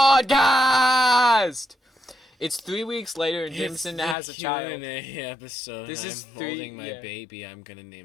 It's 3 weeks later and Jameson has a child. Q&A episode. This is I'm three- holding my yeah. baby. I'm gonna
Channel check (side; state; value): right; drops out; at 4.2 s